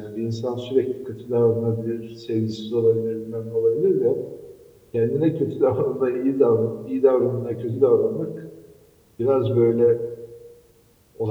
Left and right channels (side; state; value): both; identical; correlation 1.00